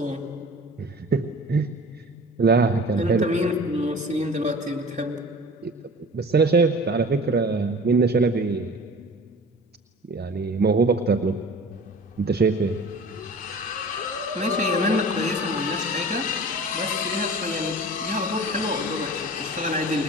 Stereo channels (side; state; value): both; normal; correlation 0.41